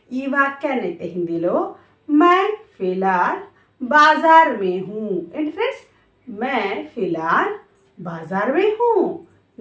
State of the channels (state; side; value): identical; both; correlation 1.00